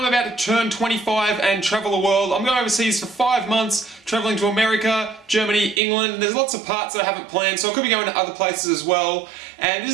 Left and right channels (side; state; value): left; drops out; at 5.8 s